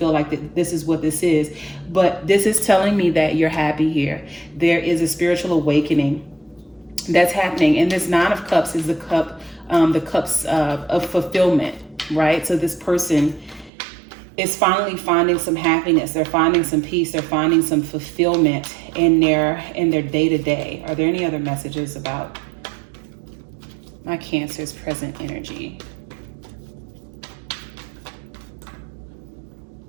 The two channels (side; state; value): left; drops out; at 13.7 s